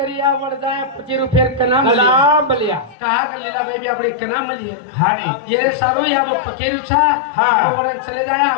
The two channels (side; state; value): right; drops out; at 3.0 s